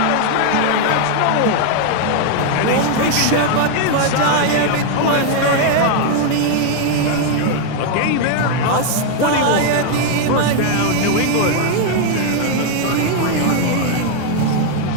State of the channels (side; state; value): both; different; correlation 0.00